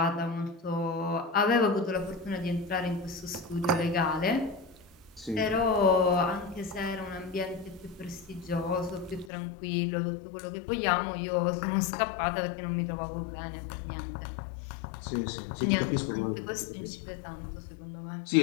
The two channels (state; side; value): drops out; right; at 9.3 s